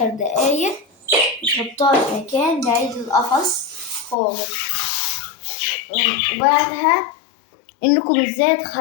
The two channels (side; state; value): right; drops out; at 4.2 s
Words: دقايق تحطوها في مكان بعيد القفص خالص. وبعدها إنكم ازاي